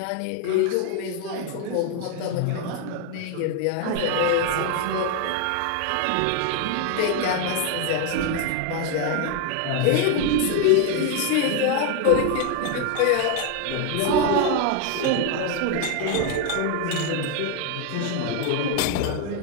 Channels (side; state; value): both; different; correlation 0.01